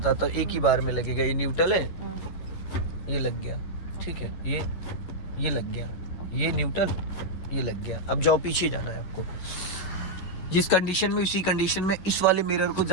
हूँ, एक ही बार में लगेगा। ये न्यूट्रल है, ये लग गया, ठीक है, ये लग गया, ये न्यूट्रल, ये लग गया। अब जाओ, पीछे जाना है आपको, जिस कंडीशन में, उसी कंडीशन में इस वाले मिरर को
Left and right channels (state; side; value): late; right; 11 ms